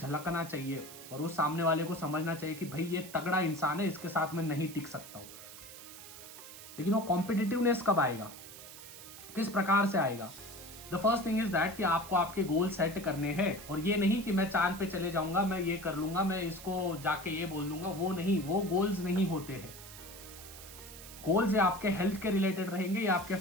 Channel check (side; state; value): right; noise; hiss, 15 dB below the sound